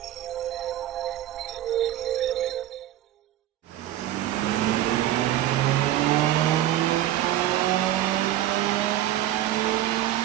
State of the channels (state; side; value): quieter; left; 13.3 dB